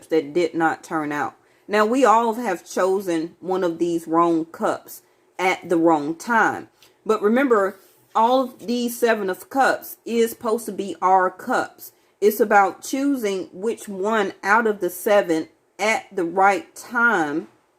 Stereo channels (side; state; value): both; identical; correlation 1.00